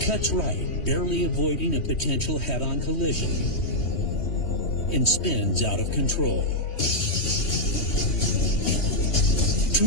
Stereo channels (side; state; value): right; late; 3.2 ms